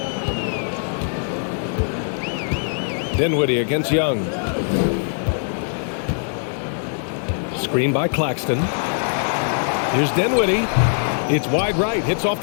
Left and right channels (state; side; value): silent; right; digital silence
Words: Dinwiddie against Young. Screen by Claxton. Here's Dinwiddie. It's wide right. Hits off